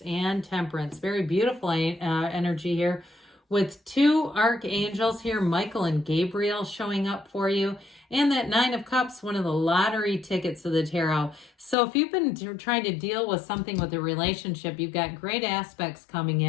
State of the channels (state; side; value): drops out; right; at 11.8 s